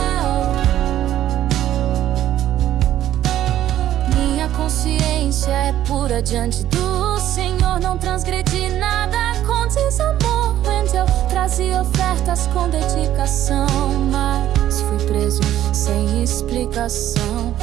Minha consciência é pura diante do Senhor. Não transgredi nada com desamor. Eu trazia ofertas com dedicação, mas fui preso sem explicação.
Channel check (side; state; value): left; quieter; 12.4 dB